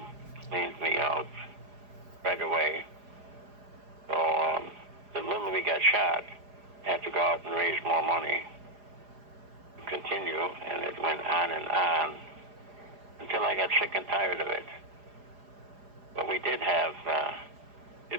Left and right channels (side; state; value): left; late; 4.9 ms